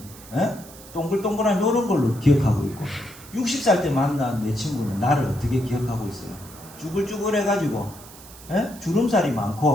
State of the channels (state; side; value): noise; right; hiss, 19 dB below the sound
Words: 동글동글한 이런 걸로 기억하고 있고 60살 때 만난 내 친구는 나를 어떻게 기억하고 있어요? 쭈글쭈글 해가지고 주름살이